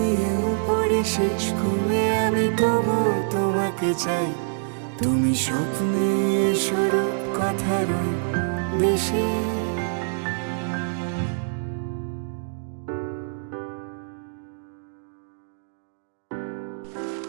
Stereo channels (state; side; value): silent; left; digital silence